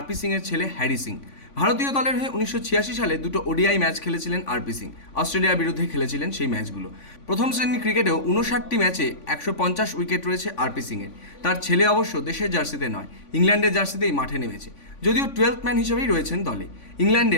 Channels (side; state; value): right; late; 3.5 ms